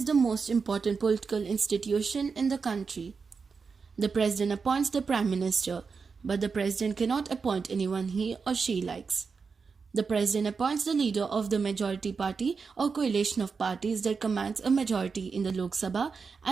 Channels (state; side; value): quieter; left; 5.2 dB